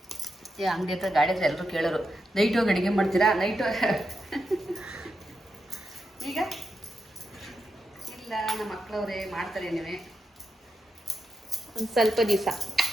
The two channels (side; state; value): both; normal; correlation 0.86